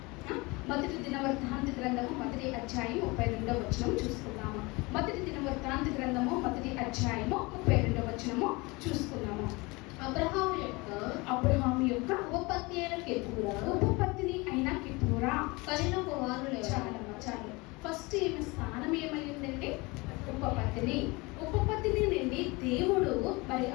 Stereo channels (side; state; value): right; quieter; 24.9 dB